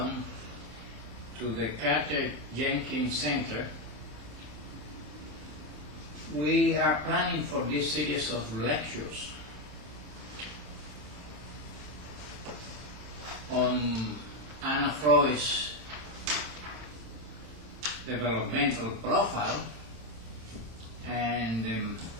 to the Carter-Jenkins Center. We are planning for this series of lectures on Anna Freud's developmental profile and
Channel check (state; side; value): late; left; 27 ms